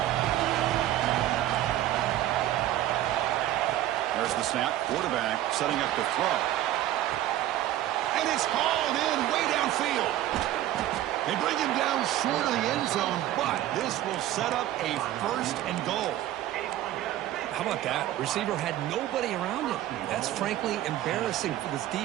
There's the snap. Quarterback setting up to throw. And it's hauled in way downfield. They bring him down short of the end zone, but this will set up a 1st and goal. How about that? Receiver had nobody around him. That's frankly embarrassing for this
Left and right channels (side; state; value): left; quieter; 13.5 dB